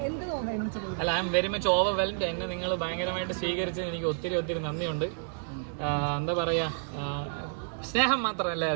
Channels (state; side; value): silent; left; digital silence